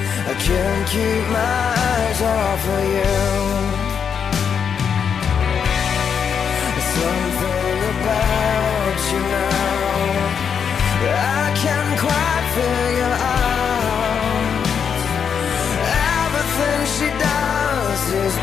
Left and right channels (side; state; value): right; quieter; 7.1 dB